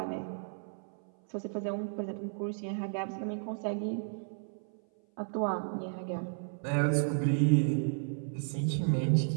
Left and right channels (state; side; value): silent; left; 56 dB below the other